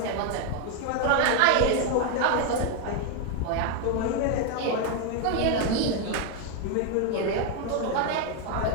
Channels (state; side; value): different; both; correlation 0.01